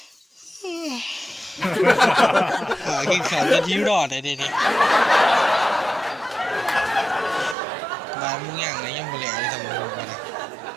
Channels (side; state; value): left; drops out; at 7.6 s